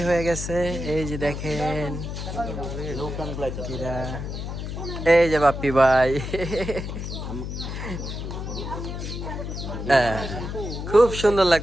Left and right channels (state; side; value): noise; left; hum, 6 dB below the sound